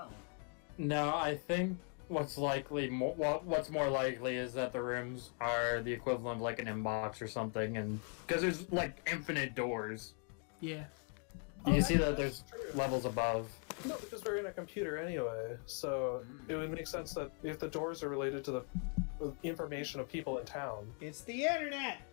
No, I think what's what's more likely is that the rooms are the equivalent of like an inbox or something, and because there's like infinite doors. Yeah. You see that that's there's true. levels above. No, because we're in a computer anyway, so it would make sense that if the doors are related to the information of people in town. It's the internet!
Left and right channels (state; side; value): quieter; right; 38.4 dB